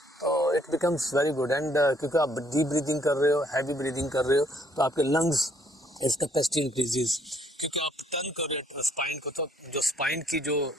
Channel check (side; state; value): both; normal; correlation 0.65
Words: तो it becomes very good. And क्योंकि आप डीप ब्रीदिंग कर रहे हो, हैवी ब्रीदिंग कर रहे हो, तो आपके लंग्स इस कैपेसिटी इंक्रीजेज, क्योंकि आप टर्न कर रहे हो स्पाइन को, तो जो स्पाइन की जो